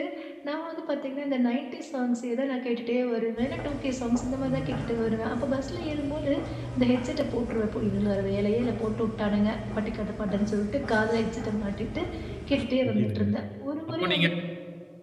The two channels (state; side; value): identical; both; correlation 1.00